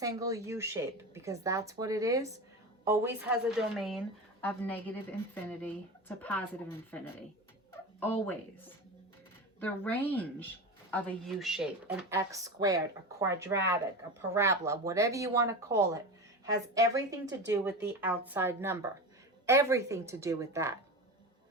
U-shape, because that's what it is, always has a domain of negative infinity to positive infinity. Always. The range of a U-shape, an x squared, a quadratic, a parabola, whatever you want to call it, has everything to do with the outside number. Everything to do with that.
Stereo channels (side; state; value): both; normal; correlation 0.26